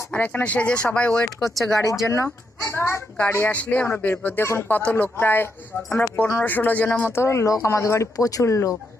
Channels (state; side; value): normal; both; correlation 0.80